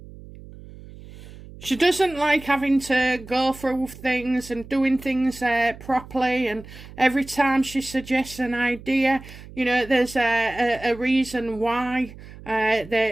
She doesn't like having to go through things and doing things properly, and every time she suggests an idea, you know, there's a reason why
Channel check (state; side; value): noise; right; hum, 17 dB below the sound